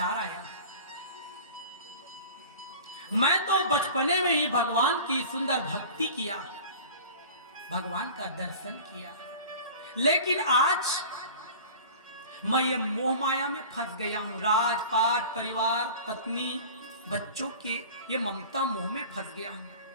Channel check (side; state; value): both; inverted; correlation -0.39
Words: आया। मैं तो बचपने में ही भगवान की सुंदर भक्ति किया, भगवान का दर्शन किया, लेकिन आज मैं ये मोह माया में फंस गया हूं। राजपाट, परिवार, पत्नी, बच्चों के ये ममता मोह में फंस गया हूं।